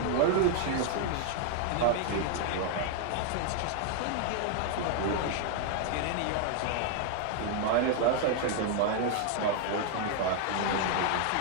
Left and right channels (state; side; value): different; both; correlation 0.00